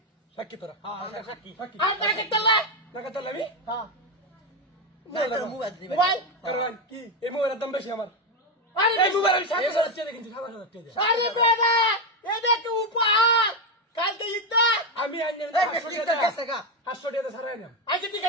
সাক্ষী তোরা হ্যাঁ সাক্ষী আর টাকা তোলা টাকা তাহলে আমি হ্যাঁ মোবাইল মোবাইল কারণ কি এই মোবাইলের দাম বেশি আমার আরে এই মোবাইল আমি 7,000 টাকা কিনছি 7,000 টাকা আরে বেটা এটা তো উপহার কালকে ইদা আমি আইনে এই ঠিক আছে গা 500 টাকা ছাড়াই না আচ্ছা ঠিক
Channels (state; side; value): normal; both; correlation 0.08